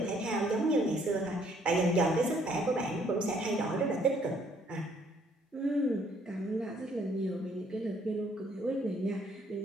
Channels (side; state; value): both; normal; correlation 0.65